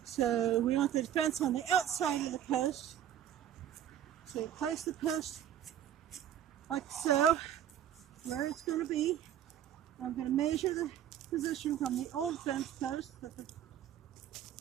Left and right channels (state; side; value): quieter; left; 10.5 dB